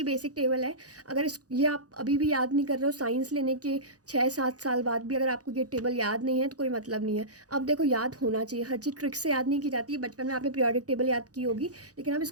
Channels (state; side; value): late; left; 0.67 ms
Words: बेसिक टेबल है। अगर ये आप अभी भी याद नहीं कर रहे हो, साइंस लेने के 6 7 साल बाद भी अगर आपको ये टेबल याद नहीं है तो कोई मतलब नहीं है। अब देखो याद होना चाहिए, हर चीज़ ट्रिक से याद नहीं की जाती है। बचपन में आपने पीरियोडिक टेबल याद की होगी, लेकिन अब